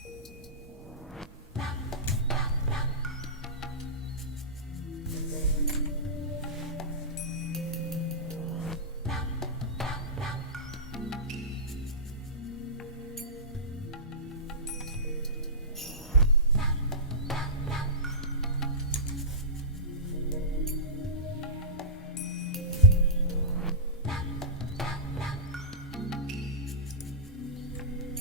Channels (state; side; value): normal; both; correlation -0.19